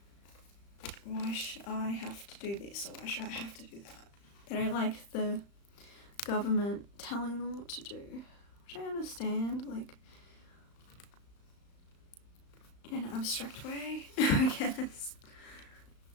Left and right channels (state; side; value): late; right; 35 ms